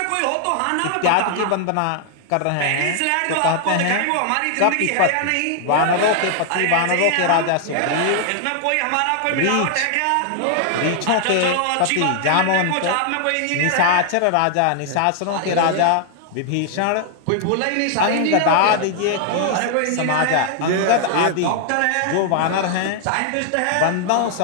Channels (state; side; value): different; both; correlation 0.00